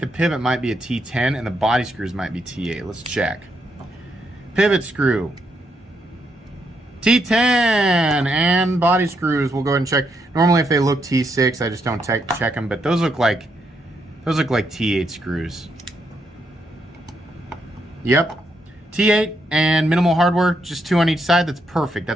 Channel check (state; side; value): normal; both; correlation 0.78